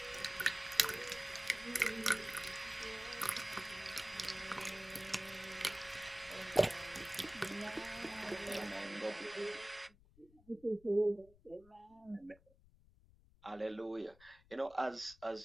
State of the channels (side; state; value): left; noise; rumble, 26 dB below the sound